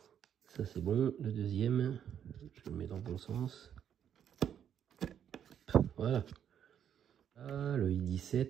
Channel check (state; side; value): quieter; left; 9.1 dB